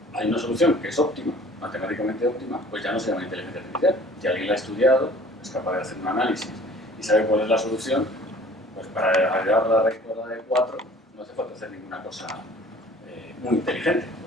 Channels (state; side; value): normal; both; correlation 0.50